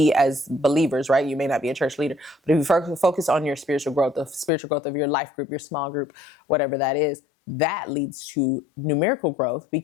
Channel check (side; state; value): right; drops out; at 4.5 s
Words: as believers, right, you may not be a church leader, but if you focus on your spiritual growth, the spiritual growth of your life group, your small group, whatever that is, that leads to numerical growth,